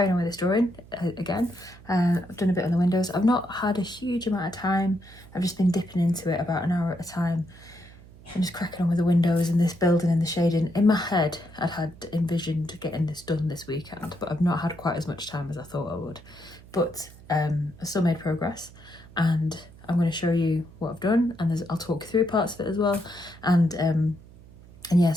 on with this drawing again. I've done a bit on the windows. I've not had a huge amount of time. I've just been dipping into it about an hour at a time and just cracking on with the windows and this building and the shading. In my head I'd had envisioned getting this done this weekend, but I've not had quite as much time as I thought I would. But I still made progress, and I'm going to show you what I've done, and I'll talk through parts of it as well. And yeah,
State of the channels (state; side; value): noise; right; hum, 21 dB below the sound